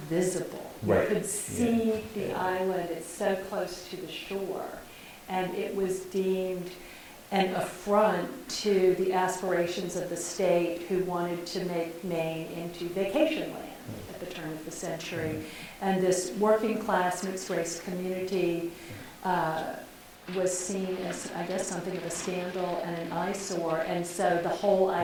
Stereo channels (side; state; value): both; identical; correlation 1.00